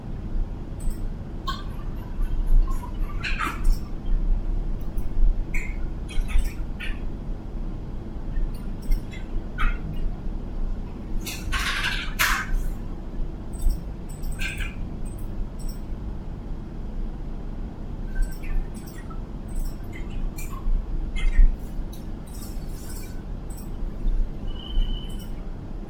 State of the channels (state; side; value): identical; both; correlation 1.00